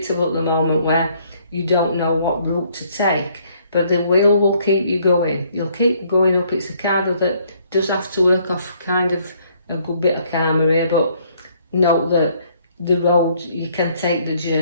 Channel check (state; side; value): inverted; both; correlation -0.65